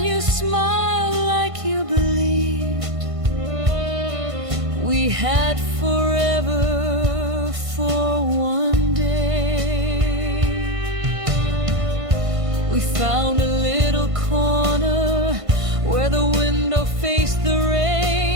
you smiled like you believed we had forever for one day. We found a little corner where the window faced the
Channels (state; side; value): late; left; 1.5 ms